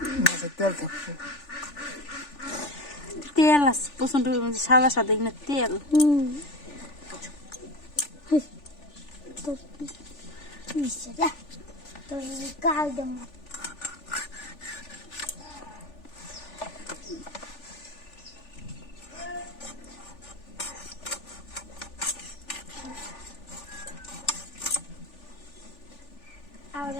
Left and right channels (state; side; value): late; right; 3.4 ms